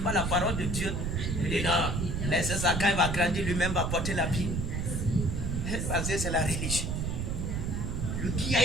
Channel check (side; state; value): right; noise; rumble, 1 dB below the sound